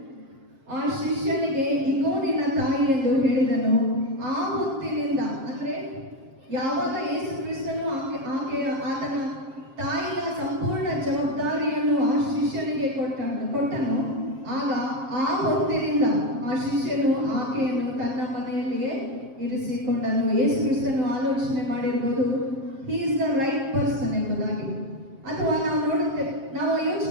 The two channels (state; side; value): late; left; 7.5 ms